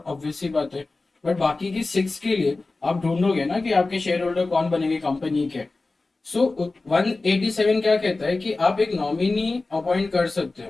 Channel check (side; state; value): right; quieter; 3.4 dB